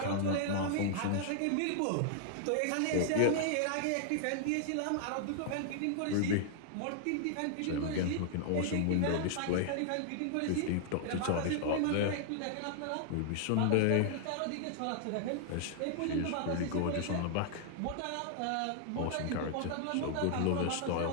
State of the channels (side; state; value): both; different; correlation -0.01